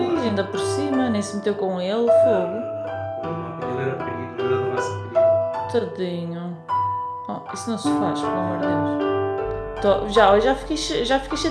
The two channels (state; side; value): identical; both; correlation 1.00